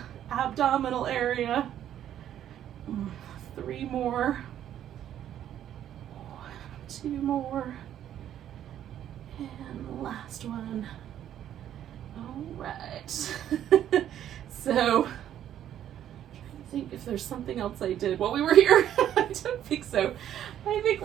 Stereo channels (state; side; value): quieter; left; 10.8 dB